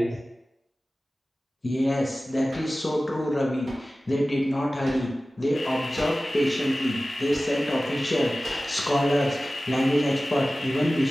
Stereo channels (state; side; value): normal; both; correlation 0.96